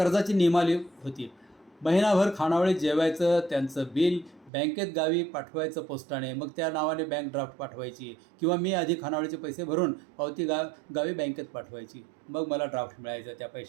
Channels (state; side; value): drops out; left; at 4.5 s